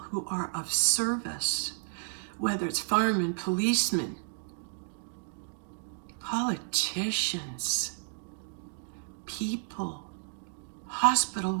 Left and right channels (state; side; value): silent; left; digital silence